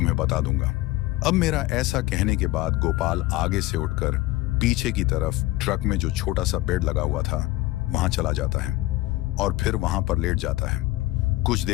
बता दूंगा। अब मेरा ऐसा कहने के बाद गोपाल आगे से उठकर पीछे की तरफ ट्रक में जो छोटा सा बेड लगा हुआ था, वहां चला जाता है और फिर वहां पर लेट जाता है। कुछ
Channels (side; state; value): right; quieter; 18.3 dB